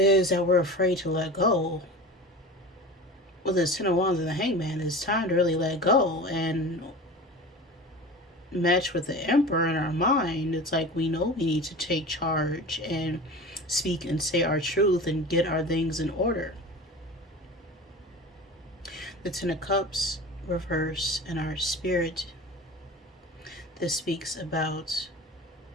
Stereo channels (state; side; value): normal; both; correlation 0.34